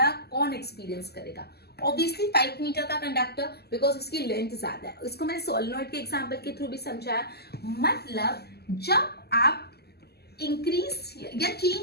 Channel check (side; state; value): right; late; 0.46 ms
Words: कौन एक्सपीरियंस करेगा? ऑब्वियसली 5 मीटर का कंडक्टर, बिकॉज उसकी लेंथ ज्यादा है। इसको मैंने सोलेनॉइड के एग्जांपल के थ्रू भी समझाया। मतलब जब आप इंक्रीज या